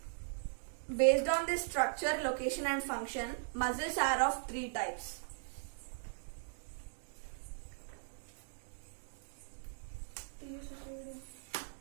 Based on this structure, location and function, muscles are of 3 types.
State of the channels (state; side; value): silent; left; digital silence